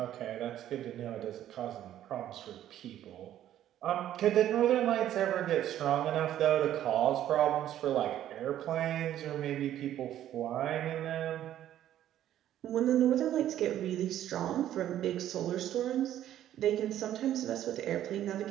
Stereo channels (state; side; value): quieter; left; 11.9 dB